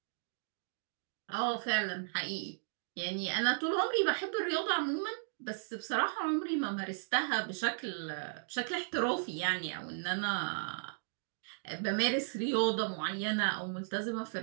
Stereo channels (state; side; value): silent; left; digital silence